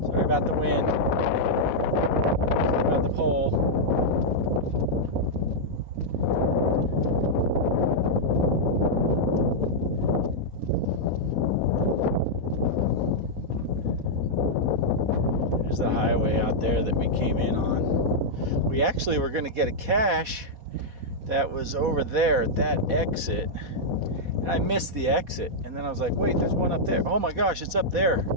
Sorry about the wind. Sorry about the pole. There's the highway out there that we came in on. We actually were going to get a cache that was over there at that exit. And I missed the exit. And then I was like, wait, there's one up there. Oh my gosh, it's up there.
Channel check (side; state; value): left; late; 4.1 ms